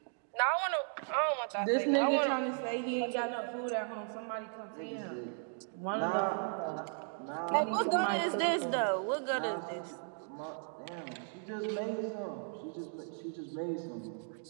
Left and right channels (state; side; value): silent; left; 54 dB below the other